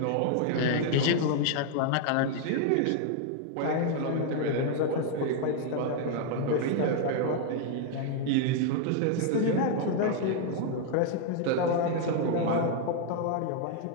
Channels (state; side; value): different; both; correlation 0.00